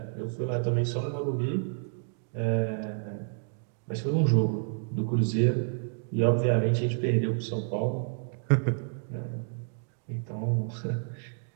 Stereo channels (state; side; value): silent; left; digital silence